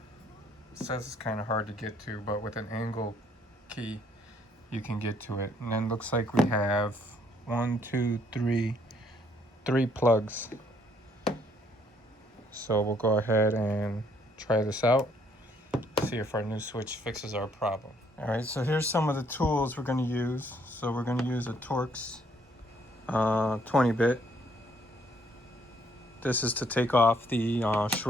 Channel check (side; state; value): both; normal; correlation 0.67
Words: says it's kind of hard to get to, but with an angle key you can get to it. And then looks like we have 3 plugs. So we'll go ahead and try this out, see if our new switch fixes our problem. All right, so here's some of the tools we're going to use. So we're going to use a Torx 20-bit. This is to take off the